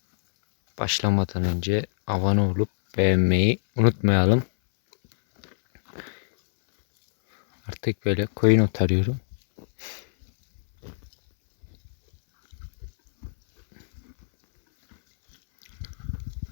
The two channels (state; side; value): silent; right; 61 dB below the other